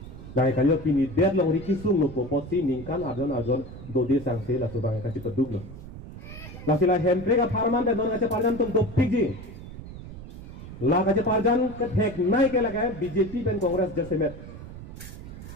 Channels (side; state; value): right; noise; rumble, 13 dB below the sound